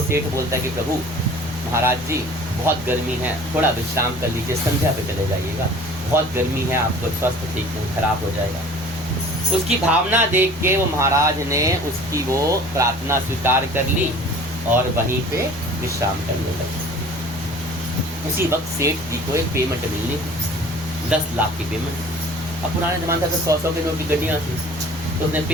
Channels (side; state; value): both; normal; correlation 0.47